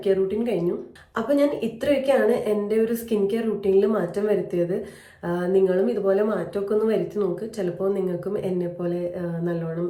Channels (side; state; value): both; identical; correlation 1.00